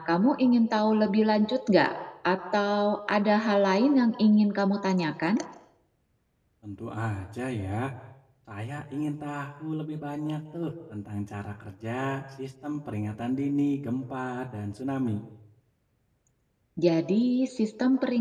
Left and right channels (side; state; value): both; identical; correlation 1.00